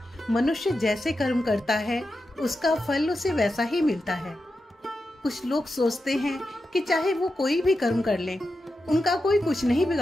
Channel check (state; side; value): normal; both; correlation 0.89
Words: मनुष्य जैसे कर्म करता है उसका फल उसे वैसा ही मिलता है। कुछ लोग सोचते हैं कि चाहे वो कोई भी कर्म कर ले, उनका कोई कुछ नहीं